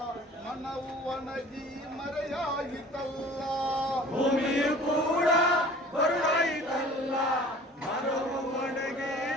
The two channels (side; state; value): both; normal; correlation 0.47